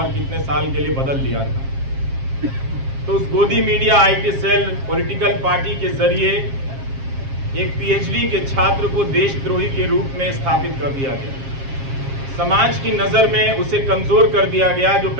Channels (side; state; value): left; late; 7.4 ms